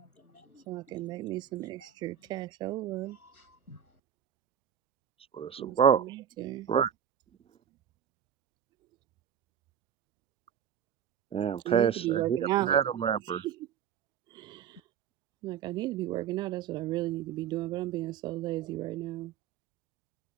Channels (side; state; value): left; quieter; 9.1 dB